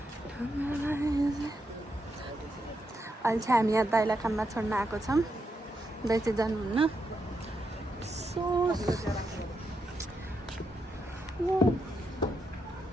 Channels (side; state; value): both; normal; correlation 0.82